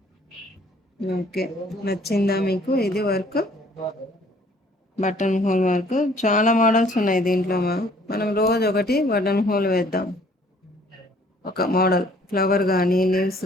ఓకే, నచ్చిందా మీకు ఇది వర్క్? బటన్ హోల్ వర్క్ చాలా మోడల్స్ ఉన్నాయి దీంట్లో. మనం రోజు ఒకటి బటన్ హోల్ వేద్దాం. ఒక మోడల్ ఫ్లవర్ కానీ, లీవ్స్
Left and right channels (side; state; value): both; normal; correlation 0.58